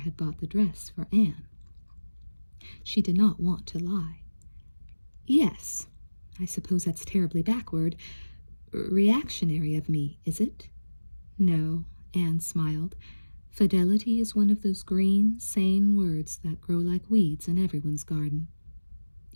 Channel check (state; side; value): inverted; both; correlation -1.00